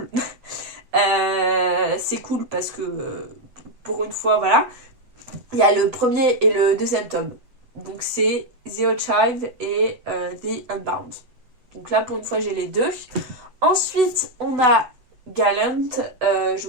C'est cool parce que pour une fois, voilà. Il y a le premier et le deuxième tome. Donc c'est The Archive et The Unbound. Donc là pour une fois j'ai les 2. Ensuite on a Gallant. Je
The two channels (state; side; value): late; left; 8.0 ms